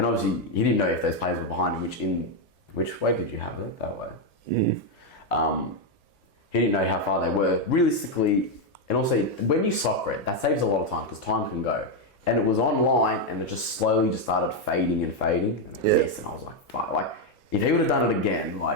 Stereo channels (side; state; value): both; normal; correlation 0.03